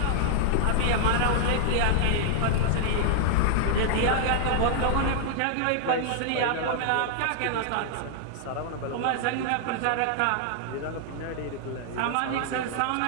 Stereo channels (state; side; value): different; both; correlation -0.01